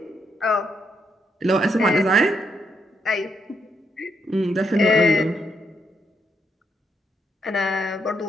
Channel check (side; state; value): both; normal; correlation 0.78